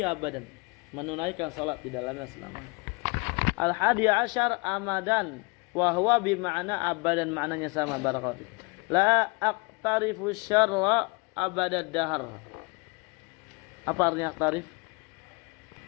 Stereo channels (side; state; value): right; quieter; 29.1 dB